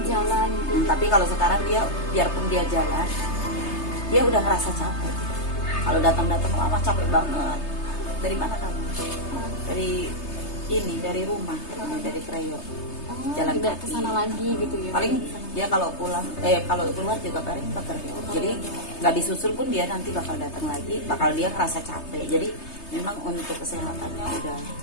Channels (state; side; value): late; right; 3.3 ms